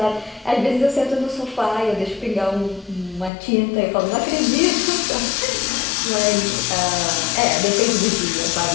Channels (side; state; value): right; drops out; at 3.3 s